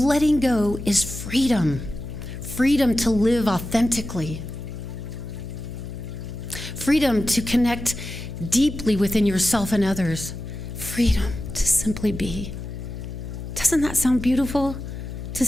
go is freedom. Freedom to live authentically. Freedom to connect deeply within yourself and others. Freedom to simply be. Doesn't that sound beautiful? To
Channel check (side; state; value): left; noise; hum, 8 dB below the sound